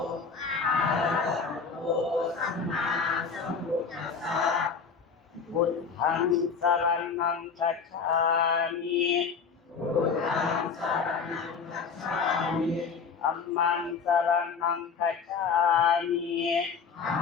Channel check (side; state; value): right; quieter; 5.7 dB